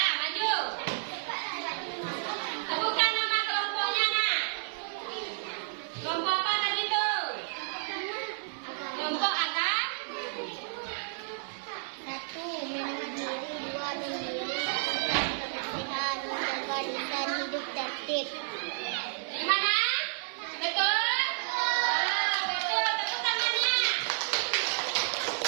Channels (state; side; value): silent; left; 57 dB below the other